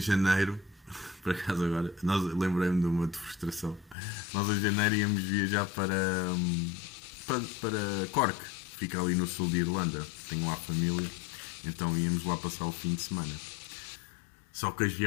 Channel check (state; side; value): drops out; right; at 4.0 s